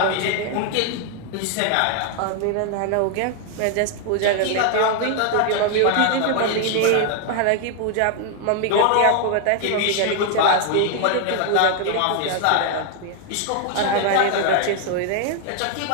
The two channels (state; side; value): different; both; correlation 0.00